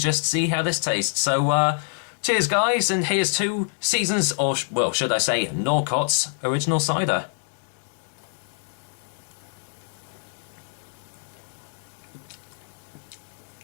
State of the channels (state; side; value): silent; right; digital silence